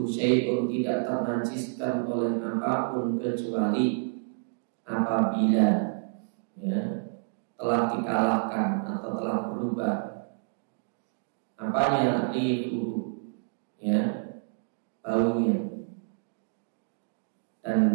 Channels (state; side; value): silent; left; digital silence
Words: syai'un, tidak ternajiskan oleh apapun kecuali apabila, ya, telah dikalahkan atau telah berubah apanya, rihu, ya, baunya dan